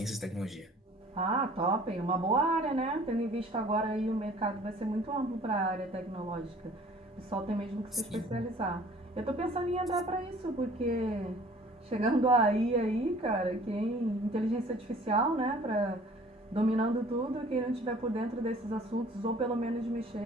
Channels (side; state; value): both; normal; correlation 0.51